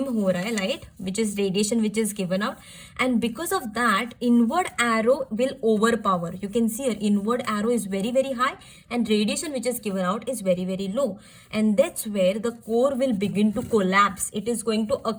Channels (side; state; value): both; identical; correlation 1.00